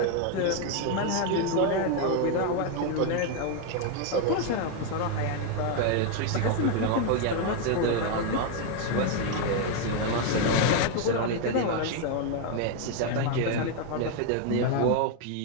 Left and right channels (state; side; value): different; both; correlation 0.01